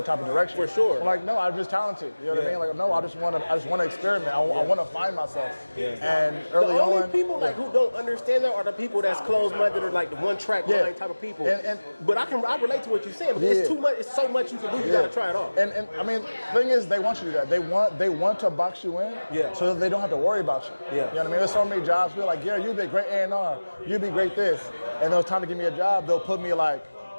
type of direction. For sure. I'm like, no, I'm just talented. You know what I mean? Like, no, I just want to experiment. I want to find myself. And early the only on, people like who don't understand that are the people that's closed-minded or like the one-track mind type of people. But I relate to what you're saying. But it's too much. It's so much you can do. You got to try it all. And I mean, the thing is, they want you to do that. They want to box you in, so that they don't have to worry about you. You know what I mean? There's so many jobs. People like, Gary, you'd be a great A&R. You'd be great this. And when it's time to give me a job, they'll put me like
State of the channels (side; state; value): both; inverted; correlation -1.00